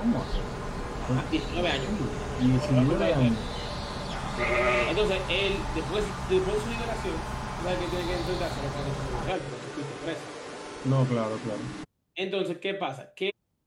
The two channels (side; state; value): both; identical; correlation 1.00